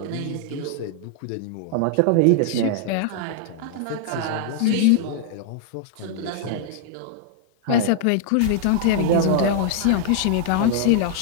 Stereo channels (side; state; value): both; different; correlation -0.01